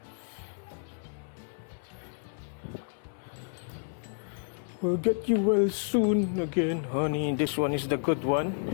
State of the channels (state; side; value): silent; right; 56 dB below the other